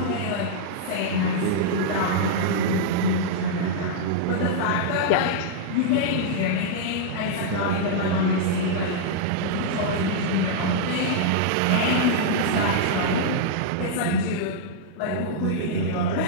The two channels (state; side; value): different; both; correlation -0.02